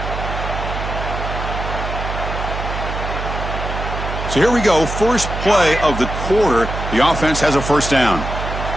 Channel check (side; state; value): right; noise; hum, 5 dB below the sound